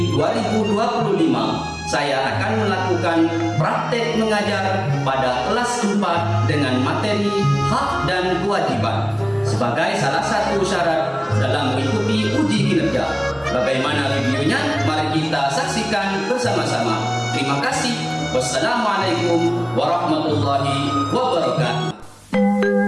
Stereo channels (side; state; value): both; identical; correlation 1.00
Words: 2025, saya akan melakukan praktek mengajar pada kelas 4 dengan materi hak dan kewajiban sebagai salah satu syarat dalam mengikuti uji kinerja. Bagaimana videonya? Mari kita saksikan bersama-sama. Terima kasih. Wassalamualaikum warahmatullahi wabarakatuh.